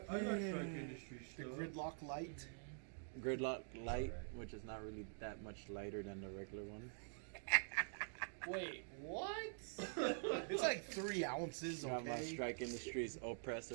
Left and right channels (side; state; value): left; silent; digital silence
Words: I like Strike Industry The stuff. gridlock light. Gridlock light, alright. which is not really that much lighter than the regular one. Wait, what? It's like 3 ounces, Got my okay? Strike Industries